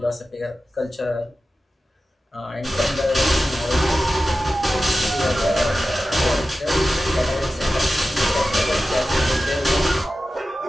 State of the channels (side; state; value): both; normal; correlation 0.94